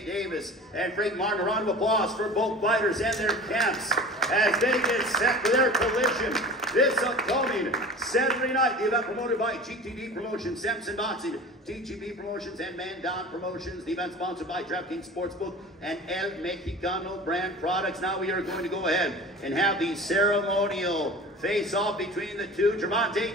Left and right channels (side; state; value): both; normal; correlation 0.38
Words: Davis. And Frank Martin, a round of applause for both fighters and their camps as they get set for their collision this upcoming Saturday night. The event promoted by GTD Promotions, Samson Boxing, TGB Promotions, and Mandan Promotions. The event sponsored by DraftKings Sportsbook and El Mexicano brand products. Now we are going to go ahead and have the ceremonial face-off between the two,